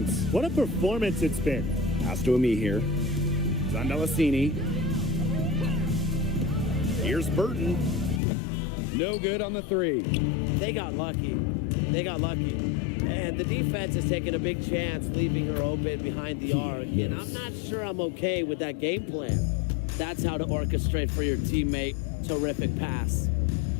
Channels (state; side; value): drops out; right; at 8.2 s